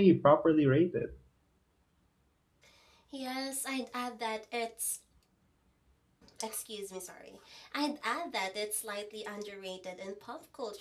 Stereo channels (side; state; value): both; identical; correlation 1.00